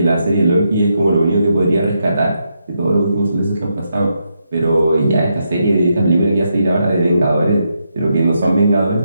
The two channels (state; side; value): inverted; both; correlation -0.82